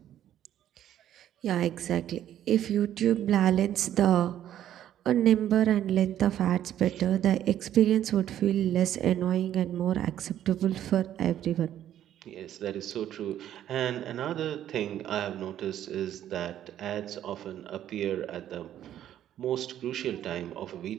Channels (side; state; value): left; quieter; 11.3 dB